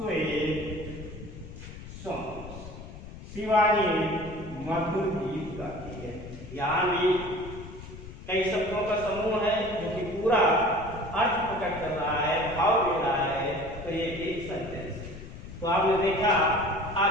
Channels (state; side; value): noise; left; rumble, 13 dB below the sound